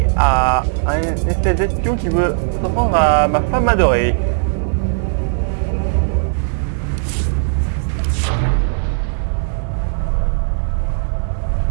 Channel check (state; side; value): silent; left; digital silence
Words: à un espèce d'espion qui veut s'en prendre à ma femme adorée.